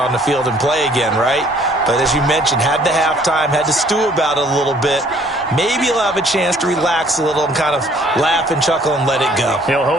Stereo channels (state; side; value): normal; both; correlation 0.59